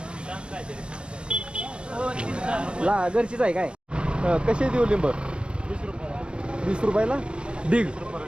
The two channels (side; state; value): left; late; 0.055 ms